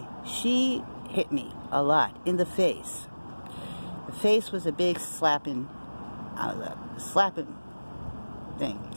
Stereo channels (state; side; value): inverted; both; correlation -1.00